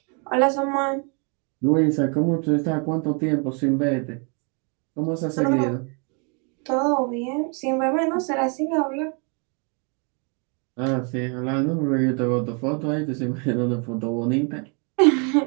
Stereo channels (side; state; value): left; quieter; 36.4 dB